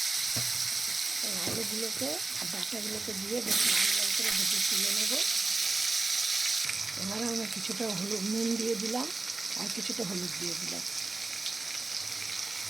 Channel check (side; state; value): left; quieter; 3.5 dB